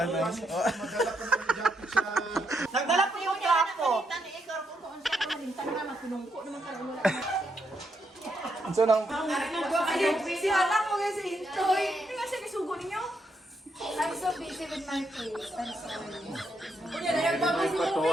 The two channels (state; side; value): normal; both; correlation 0.79